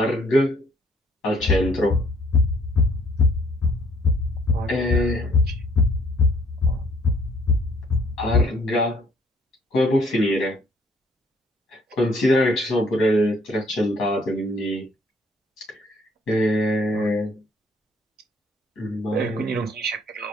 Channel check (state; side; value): normal; both; correlation 0.63